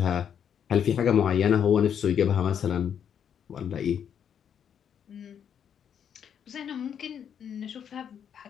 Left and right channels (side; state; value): right; quieter; 8.4 dB